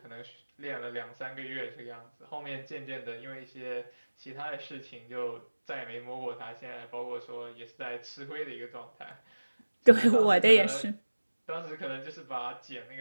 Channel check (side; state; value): both; inverted; correlation -1.00